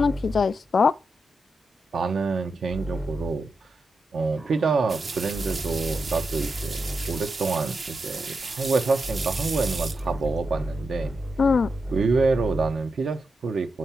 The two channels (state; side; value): normal; both; correlation 0.86